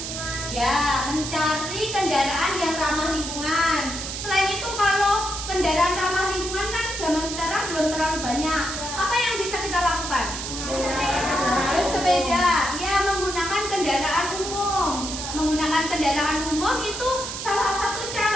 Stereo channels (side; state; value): right; noise; hiss, 6 dB below the sound